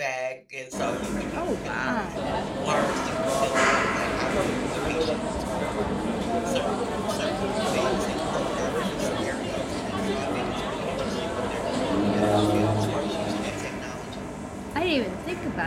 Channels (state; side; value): identical; both; correlation 1.00